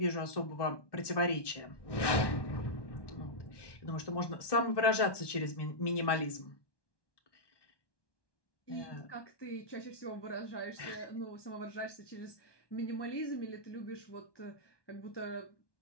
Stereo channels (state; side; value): late; right; 1.2 ms